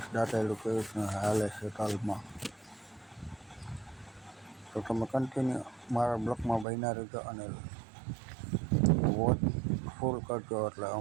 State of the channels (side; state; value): left; drops out; at 6.7 s